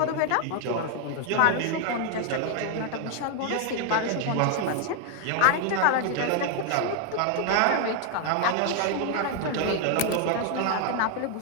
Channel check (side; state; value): both; different; correlation 0.00